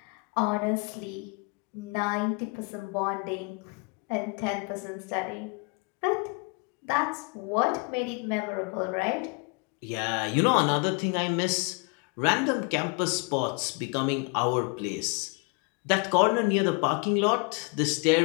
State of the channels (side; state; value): right; quieter; 31.8 dB